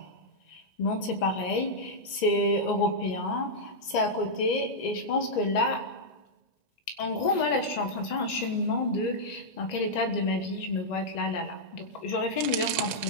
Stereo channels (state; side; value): late; right; 1.9 ms